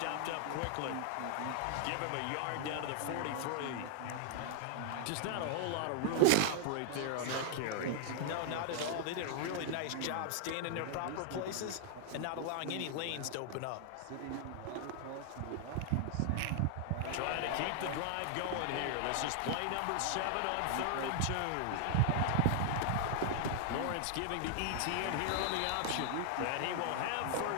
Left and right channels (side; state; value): both; different; correlation 0.00